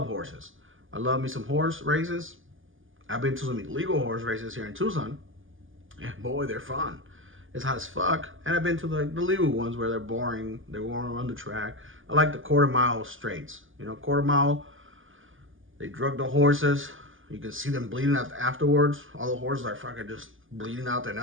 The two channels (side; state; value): left; late; 0.58 ms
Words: I love me some horse races. I've been to some illegal horse races here in Tucson. And boy, they're fun. It's hot as fuck. And I've been to the legal ones where they're boring. They won't run the track. I like the quarter-mile straights. Quarter-mile, they drug the horses. You can see them bleeding out afterwards. All the horses are fucking just bleeding out their